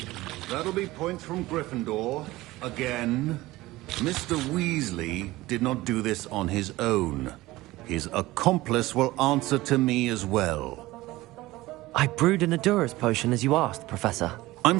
That'll be points from Gryffindor. Again. Mr. Weasley did not do this on his own. His accomplice will answer to me as well. I brewed an Adura's potion as you asked, Professor.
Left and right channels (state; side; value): quieter; left; 18.5 dB